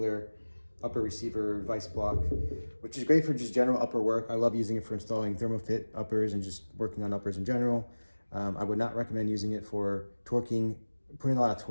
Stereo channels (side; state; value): both; inverted; correlation -1.00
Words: upper receiver vise block, which is great for just general upper work. I love using it for installing Thermofit uppers and just working on uppers in general. I would not recommend using it for torquing, putting a lot of